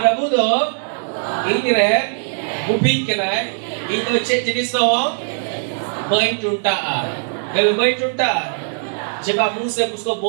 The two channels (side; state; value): left; silent; digital silence